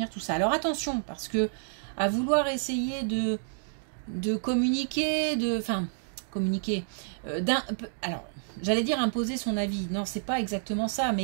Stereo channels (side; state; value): left; silent; digital silence